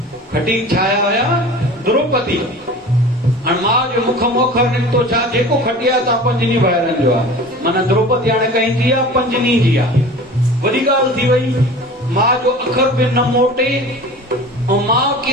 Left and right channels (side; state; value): both; normal; correlation 0.39